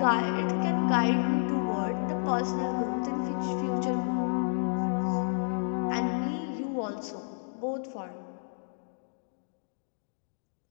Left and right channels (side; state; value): right; silent; digital silence